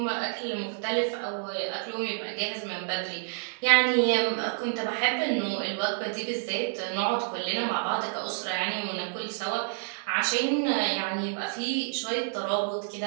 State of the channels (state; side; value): silent; left; 59 dB below the other